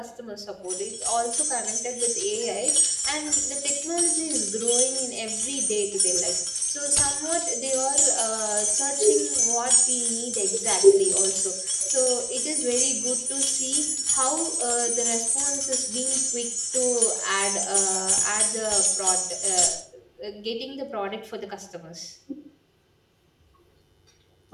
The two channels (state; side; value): identical; both; correlation 1.00